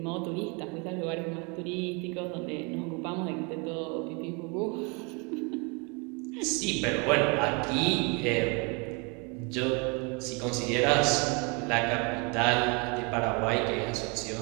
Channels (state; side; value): quieter; left; 31.6 dB